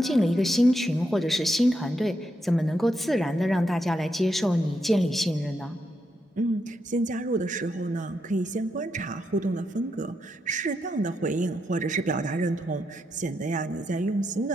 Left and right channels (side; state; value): both; normal; correlation 0.82